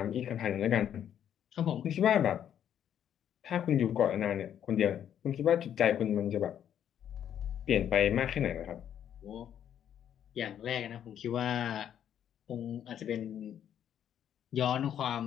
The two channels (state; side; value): quieter; right; 9.7 dB